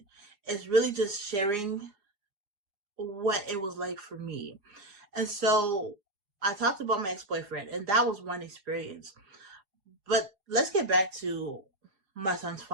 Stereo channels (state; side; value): late; left; 4.8 ms